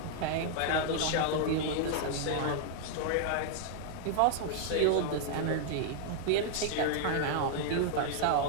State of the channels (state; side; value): different; both; correlation -0.01